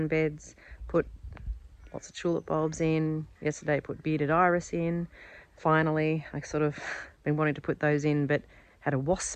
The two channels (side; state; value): both; identical; correlation 1.00